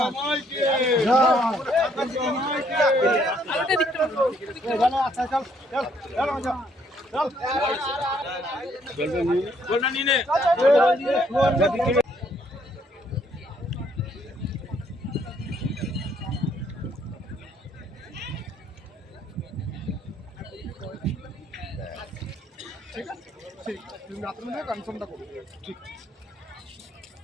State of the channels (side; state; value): both; normal; correlation 0.67